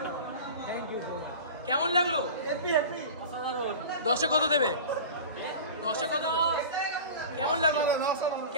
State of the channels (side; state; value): both; inverted; correlation -0.34